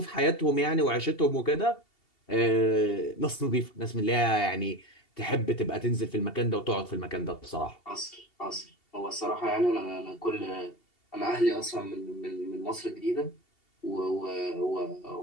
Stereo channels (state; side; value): late; right; 2.7 ms